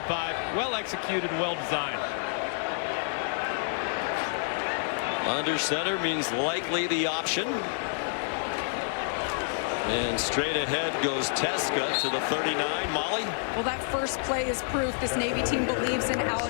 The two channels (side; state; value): right; silent; 59 dB below the other